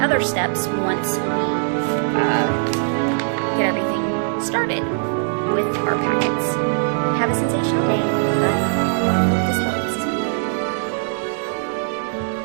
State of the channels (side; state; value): left; silent; digital silence